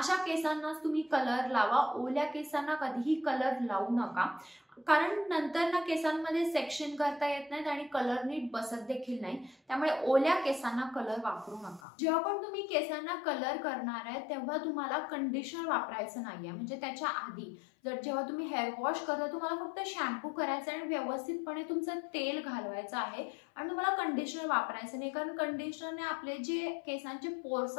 केसांनाच तुम्ही कलर लावा। ओल्या केसांना कधीही कलर लावू नका, कारण नंतर ना केसांमध्ये सेक्शन करता येत नाहीत आणि कलर नीट बसत देखील नाही। त्यामुळे ओल्या केसांना कलर वापरू नका। जेव्हा पण तुम्ही केसांना कलर करणार आहे तेव्हा तुम्हाला कंडिशनर वापरायचं नाहीये, म्हणजे त्याच्या आधी जेव्हा तुम्ही हेअर वॉश करता तुम्हाला फक्त शॅम्पू करायचा आणि व्यवस्थितपणे तुमचं तेल घालवायचं आहे आणि तुम्हाला कंडिशनर वापरायचं नाही, कारण कंडिशनरने आपले जे केसांचे पोर्स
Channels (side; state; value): right; drops out; at 11.8 s